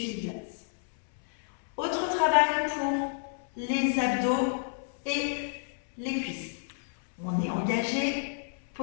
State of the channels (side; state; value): right; silent; 58 dB below the other